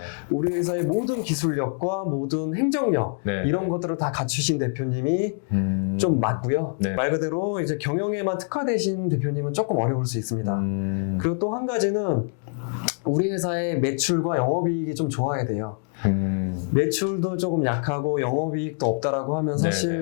우리 회사의 모든 기술력과 모든 행정력 이런 것들을 다 갖추신 대표님이 좀 맞고요. 네. 말 그대로 이제 경영에만 특화되신 대표님은 조금 어려울 수 있습니다. 그리고 또 한 가지는 우리 회사의 매출과 영업이익이 좀 좋아야 돼요. 매출도 조금 약하고 영업이익도 없다라고 하면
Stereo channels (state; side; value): silent; right; 55 dB below the other